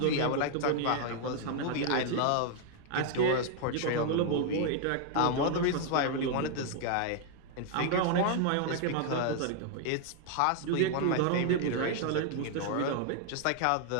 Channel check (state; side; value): different; both; correlation 0.00